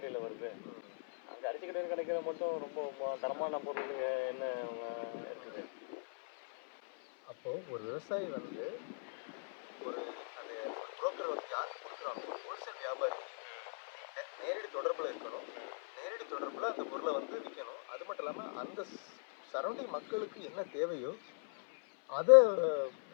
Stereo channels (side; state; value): right; silent; 51 dB below the other